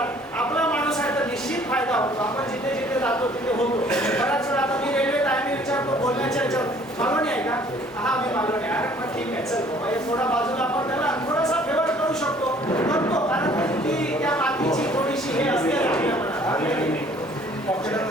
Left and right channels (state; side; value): normal; both; correlation 0.56